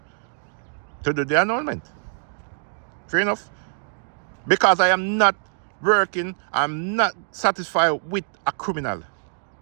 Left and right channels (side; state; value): left; silent; digital silence